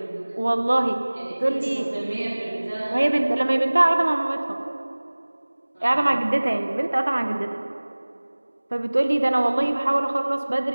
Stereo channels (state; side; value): inverted; both; correlation -1.00